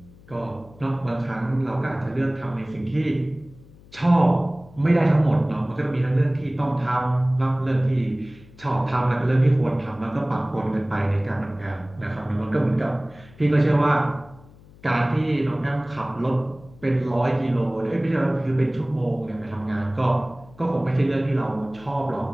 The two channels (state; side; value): noise; left; hum, 23 dB below the sound